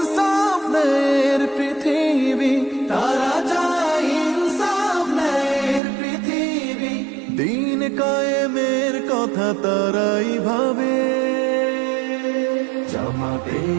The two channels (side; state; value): left; drops out; at 5.8 s